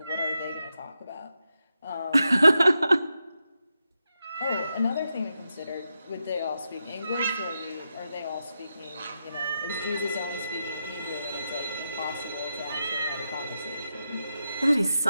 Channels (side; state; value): both; inverted; correlation -0.87